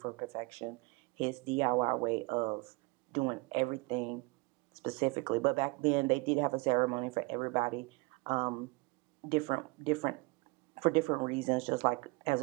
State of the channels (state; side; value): quieter; left; 25.9 dB